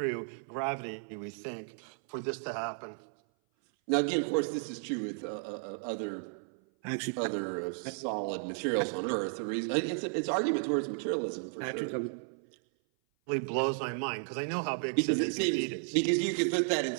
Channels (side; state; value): left; silent; 55 dB below the other